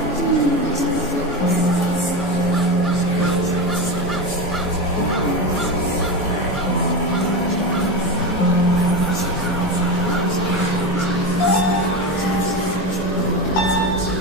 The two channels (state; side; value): normal; both; correlation 0.19